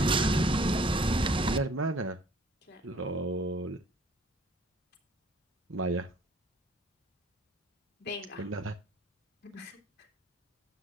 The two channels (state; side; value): normal; both; correlation 0.56